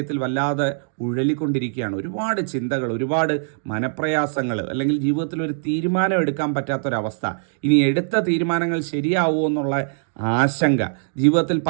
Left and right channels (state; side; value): silent; left; digital silence